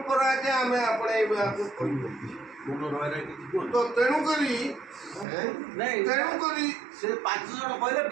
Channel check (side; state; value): left; drops out; at 5.2 s